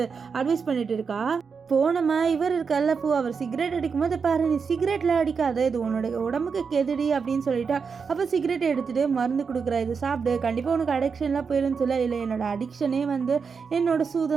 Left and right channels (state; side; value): quieter; left; 5.7 dB